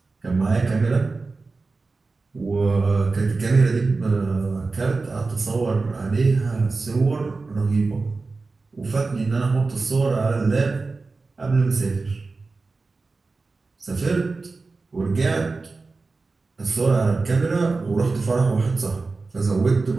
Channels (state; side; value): quieter; left; 3.9 dB